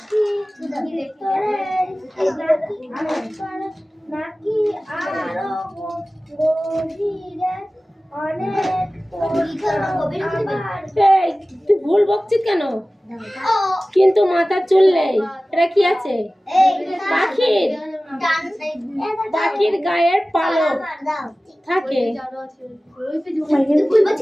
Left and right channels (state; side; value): normal; both; correlation 0.97